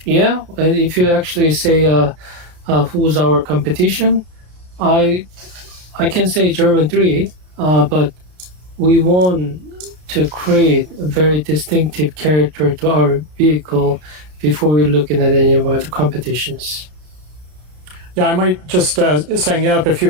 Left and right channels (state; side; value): late; left; 33 ms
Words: yeah, if you actually say who's our competition, I can say German 3, but we want to create a very distinctive character to our vehicle before we're looking at any of other competitions. Yeah, I might just SangYup, if you